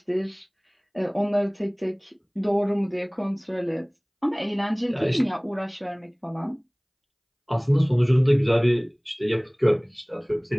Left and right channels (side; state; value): both; identical; correlation 1.00